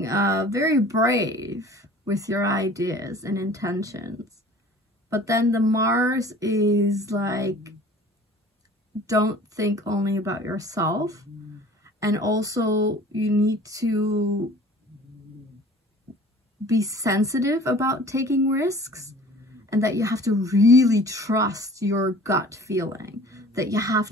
very brave with your ideas and intentions. But then the Mars is like, don't think only about yourself. And also you need to be sensitive about taking risks, and that you have to really trust your gut feeling, that you have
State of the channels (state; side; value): normal; both; correlation 0.47